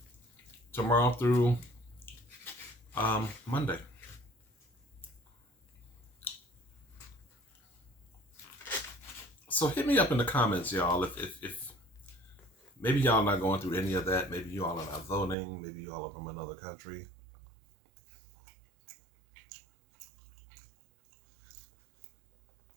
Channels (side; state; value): left; drops out; at 15.4 s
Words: tomorrow through Monday. So hit me up in the comments, y'all, if maybe y'all not going through any of that. Maybe you all are not voting. Maybe you all are from another country.